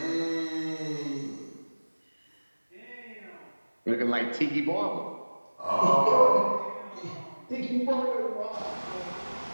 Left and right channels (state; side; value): inverted; both; correlation -1.00